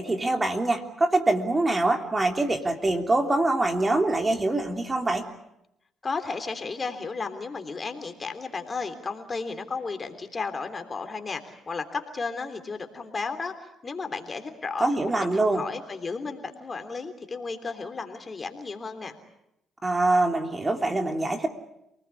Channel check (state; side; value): normal; both; correlation 0.90